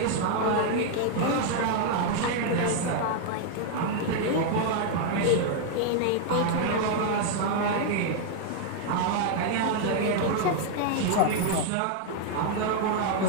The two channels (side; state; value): both; different; correlation 0.00